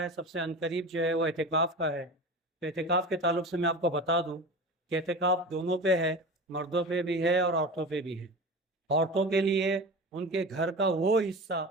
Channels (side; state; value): both; normal; correlation 0.31